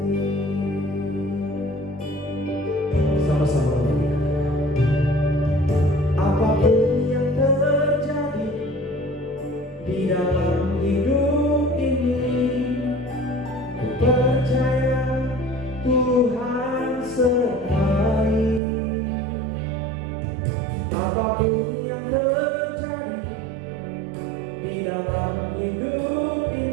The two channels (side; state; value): left; drops out; at 18.6 s